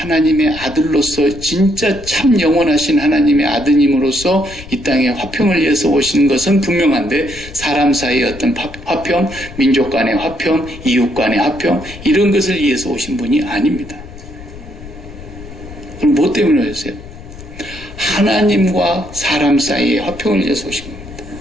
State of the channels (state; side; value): noise; left; rumble, 15 dB below the sound